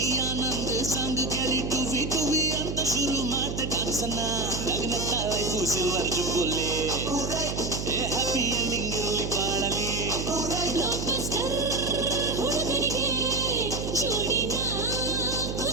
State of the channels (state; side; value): noise; right; hum, 5 dB below the sound